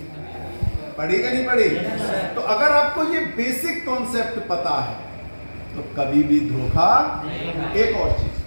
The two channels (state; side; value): inverted; both; correlation -1.00